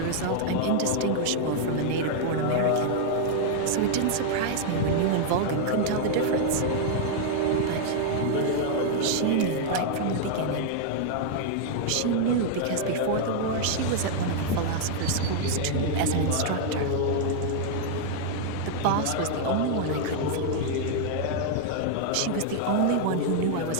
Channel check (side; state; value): both; different; correlation -0.01